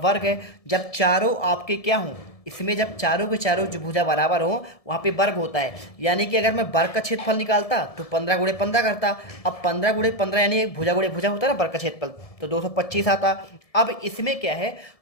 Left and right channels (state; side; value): late; right; 1.7 ms